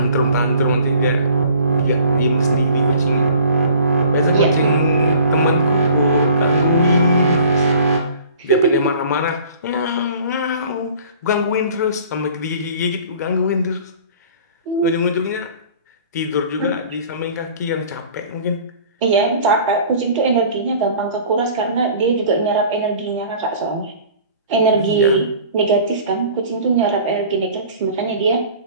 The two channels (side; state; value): both; inverted; correlation -0.48